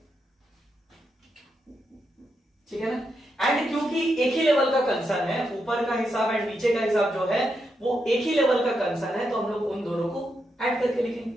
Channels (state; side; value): normal; both; correlation 0.83